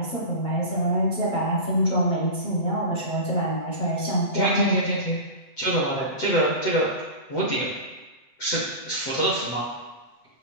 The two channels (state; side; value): late; right; 8.0 ms